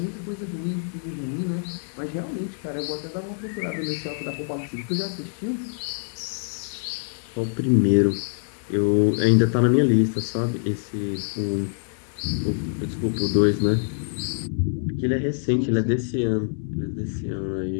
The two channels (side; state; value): right; silent; digital silence